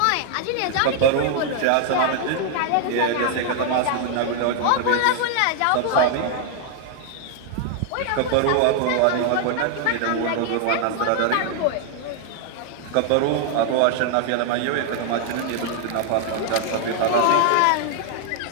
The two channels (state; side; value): different; both; correlation 0.00